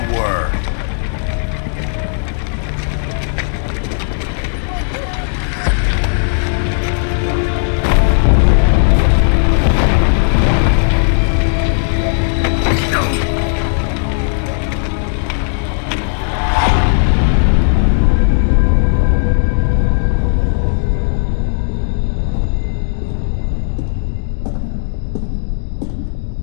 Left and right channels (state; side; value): silent; right; digital silence